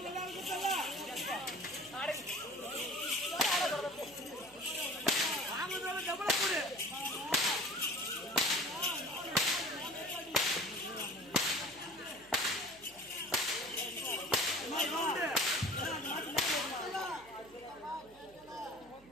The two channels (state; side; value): noise; right; hum, 25 dB below the sound